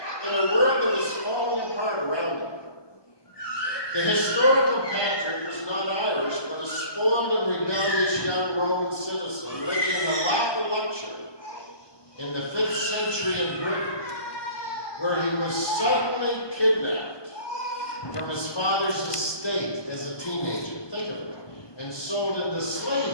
in a world that was falling apart around him. The historical Patrick was not Irish, but a spoiled and rebellious young Roman citizen living in the lap of luxury in the 5th century in Britain, where he was suddenly kidnapped from his father's estate as a teenager, think of it, and sold into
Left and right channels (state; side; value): late; right; 1.2 ms